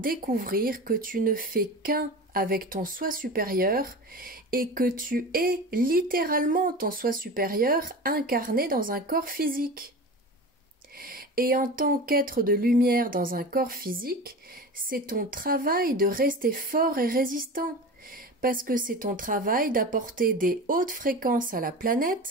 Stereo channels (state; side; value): normal; both; correlation 0.31